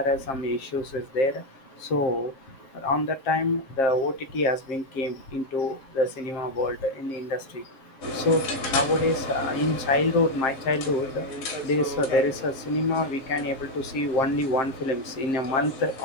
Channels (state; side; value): late; right; 7.5 ms